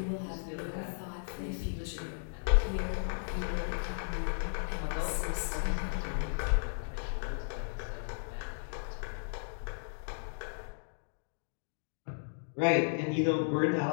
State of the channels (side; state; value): right; silent; digital silence